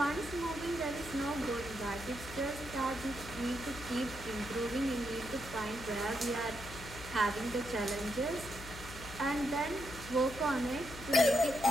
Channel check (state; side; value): noise; left; hum, 13 dB below the sound